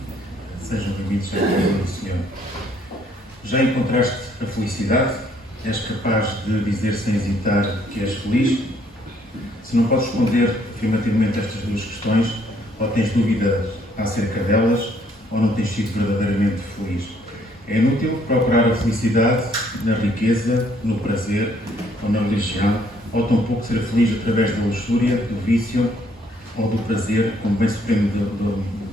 Sejam bem-vindos à casa do Senhor. Já encontraste a felicidade? És capaz de dizer sem hesitar que és feliz? Se não podes responder afirmativamente a estas duas questões, ou tens dúvida acerca delas, ou não tens sido verdadeiramente feliz. É inútil procurar a felicidade na riqueza, no prazer ou na religião, ou tampouco ser feliz através da luxúria, do vício ou do prazer como bem supremo do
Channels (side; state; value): both; normal; correlation 0.66